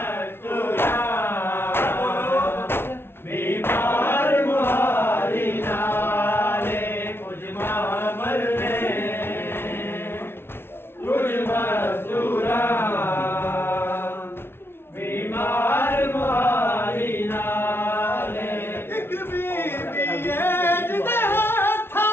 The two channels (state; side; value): late; right; 0.11 ms